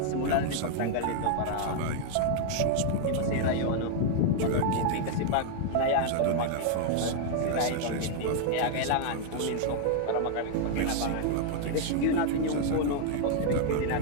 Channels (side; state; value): both; different; correlation 0.00